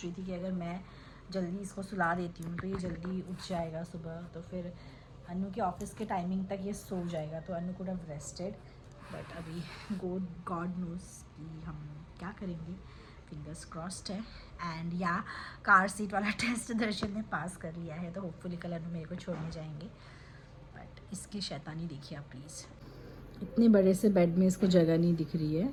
रही थी कि अगर मैं जल्दी इसको सुला देती हूँ तो ये जल्दी उठ जाएगा सुबह, तो फिर अनु के ऑफिस के टाइमिंग तक ये सो जाएगा, तो अनु कुड हैव रेस्टेड। बट अभी गॉड नोज़ कि हम क्या करेंगे, फिंगर्स क्रॉस्ड है। एंड या कार सीट वाला टेस्ट दर्शन ने पास कर लिया है, तो होपफुली कल अनु मेरे को छोड़ने जाएंगे। बट इसकी शैतानी देखिए आप प्लीज़। इतने बड़े से बेड में इसको जगह नहीं दिख रही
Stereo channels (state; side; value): identical; both; correlation 1.00